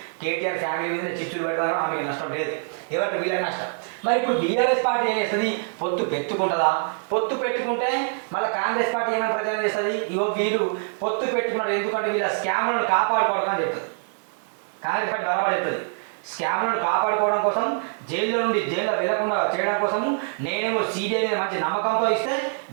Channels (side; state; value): left; silent; digital silence